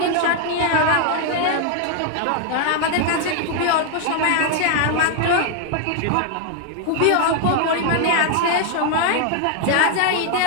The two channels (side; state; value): both; different; correlation 0.00